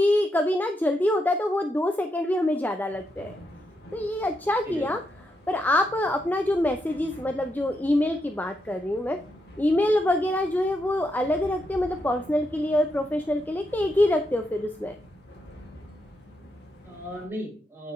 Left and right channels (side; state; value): both; normal; correlation 0.82